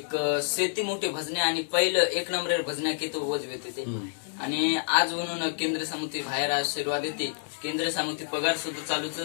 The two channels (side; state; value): right; silent; digital silence